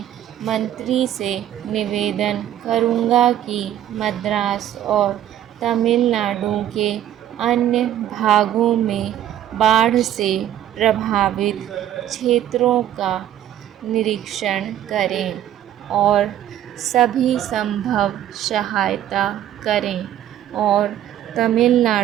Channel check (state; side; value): quieter; left; 11.6 dB